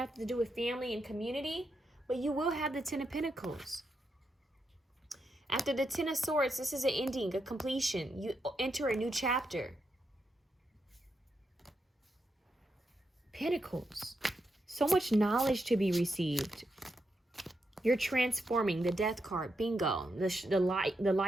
to do with family and community, but you will have the 10 of Pentacles. After the 10 of Swords, this is an ending, a completion. You enter a new chapter. Pentacles. So much knowledge to be received. You're transforming. The Death card. Bingo. The light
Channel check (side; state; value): both; normal; correlation 0.83